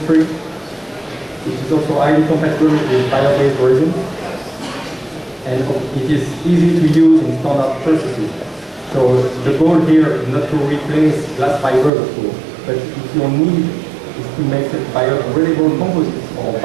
It is also highly compatible with bio-based resins, and it is easy to use in standard processes. So the goal here is not to replace glass fibers, of course, but if your need is to make biodegradable composites or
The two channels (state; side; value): drops out; left; at 11.9 s